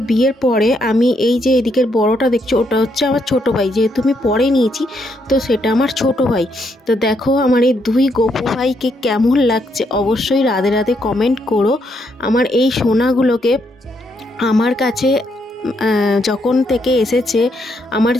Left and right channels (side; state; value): both; normal; correlation 0.76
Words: বিয়ের পরে আমি এই যে এদিকের বড়টা দেখছো, ওটা হচ্ছে আমার ছোট ভাই, যেহেতু আমি পরে নিয়েছি তো সেটা আমার ছোট ভাই। তো দেখো আমার এই দুই গপু ভাইকে কেমন লাগছে অবশ্যই রাধে রাধে কমেন্ট করো। আমার এই সোনাগুলোকে আমার কাছে যখন থেকে এসেছে, আমার